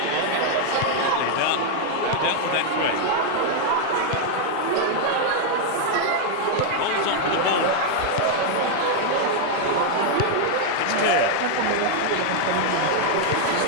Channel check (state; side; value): different; both; correlation 0.00